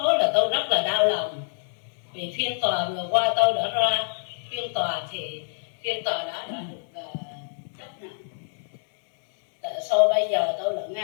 là tôi rất là đau lòng, vì phiên tòa vừa qua tôi đã ra phiên tòa thì phiên tòa đã được chấp nhận. Tại sao bây giờ tôi lại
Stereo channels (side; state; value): right; silent; 61 dB below the other